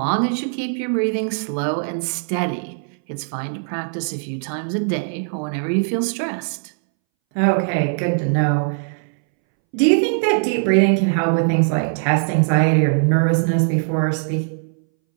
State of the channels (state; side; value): silent; left; 63 dB below the other